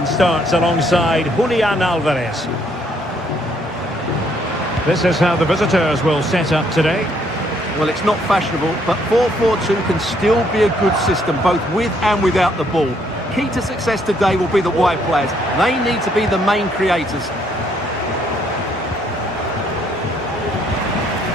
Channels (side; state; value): both; normal; correlation 0.69